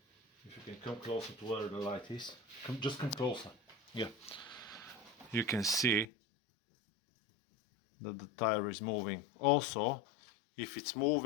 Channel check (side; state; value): right; drops out; at 6.1 s